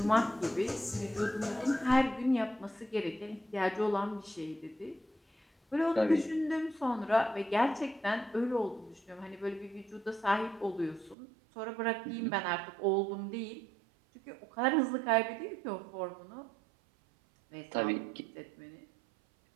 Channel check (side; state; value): left; drops out; at 11.2 s